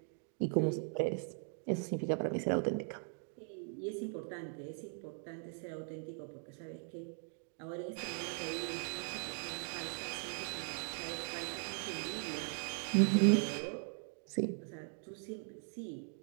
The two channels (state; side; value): silent; left; 51 dB below the other